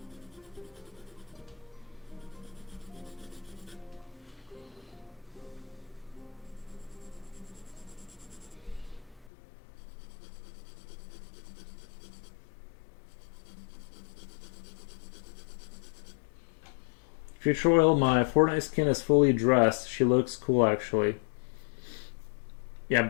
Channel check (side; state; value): right; drops out; at 9.2 s